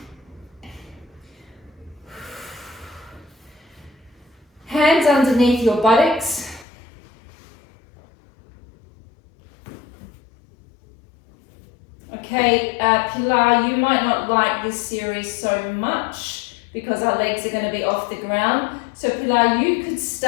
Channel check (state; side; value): drops out; right; at 6.7 s